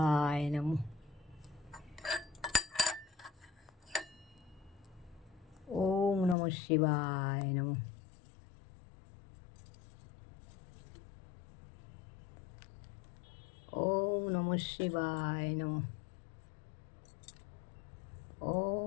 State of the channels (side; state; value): right; drops out; at 6.4 s